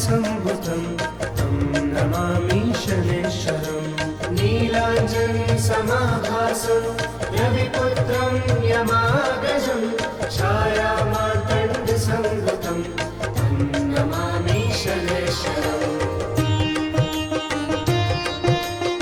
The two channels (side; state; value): both; identical; correlation 1.00